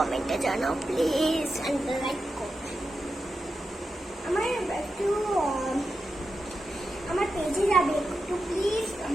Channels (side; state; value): both; normal; correlation 0.89